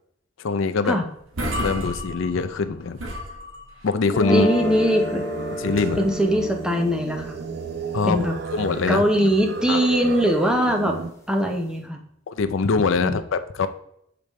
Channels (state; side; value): normal; both; correlation 0.54